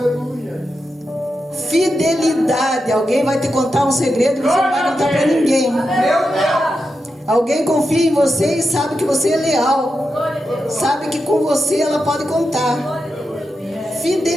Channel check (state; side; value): normal; both; correlation 0.88